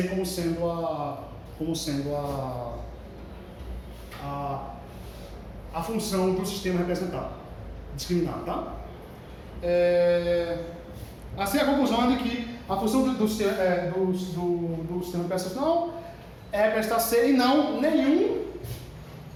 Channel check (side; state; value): both; identical; correlation 1.00